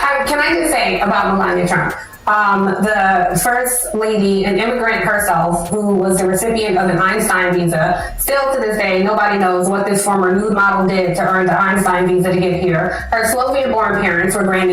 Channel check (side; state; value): both; identical; correlation 1.00